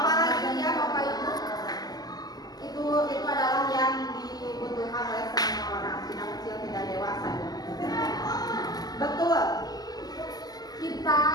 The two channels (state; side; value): late; right; 0.19 ms